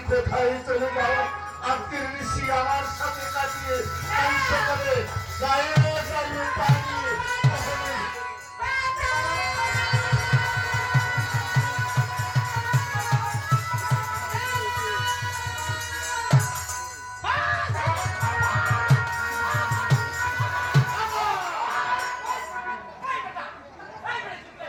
কোথায় চলে যাও আজকের নিশি আমার সাথে কাটিয়ে কাল সকালে গায়ে গায়ে পাঠিয়ে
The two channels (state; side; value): identical; both; correlation 1.00